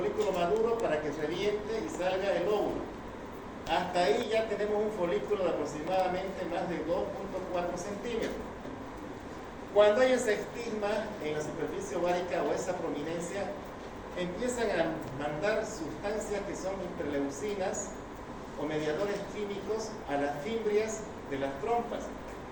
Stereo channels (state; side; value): identical; both; correlation 1.00